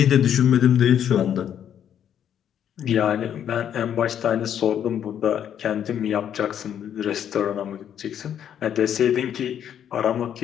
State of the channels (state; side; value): quieter; right; 9.5 dB